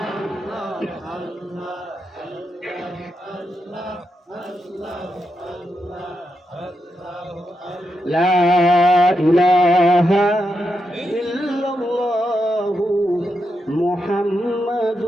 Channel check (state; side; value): normal; both; correlation 0.85